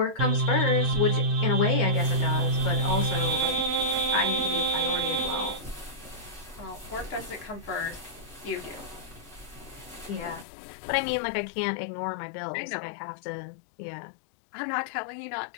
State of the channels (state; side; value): drops out; right; at 10.5 s